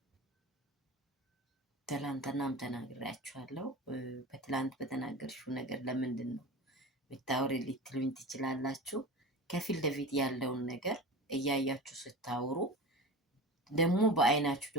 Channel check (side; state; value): both; normal; correlation 0.31